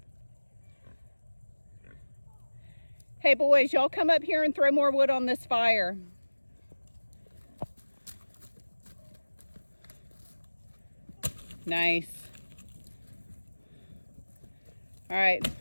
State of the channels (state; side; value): inverted; both; correlation -1.00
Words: Hey boys, y'all come up here and throw more wood on this fire. Nice. All right,